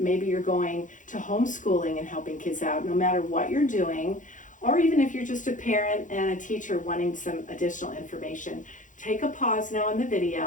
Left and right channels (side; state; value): right; late; 0.37 ms